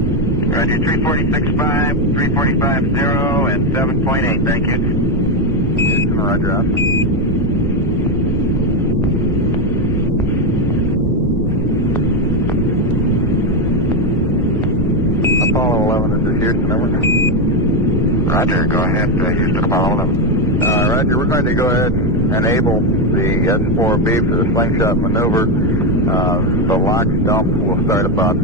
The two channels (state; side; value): normal; both; correlation 0.08